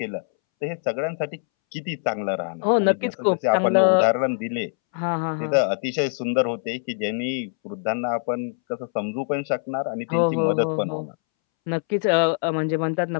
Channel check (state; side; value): silent; right; 63 dB below the other